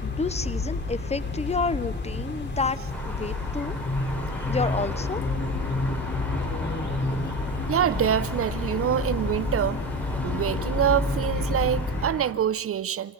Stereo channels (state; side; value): normal; both; correlation 0.28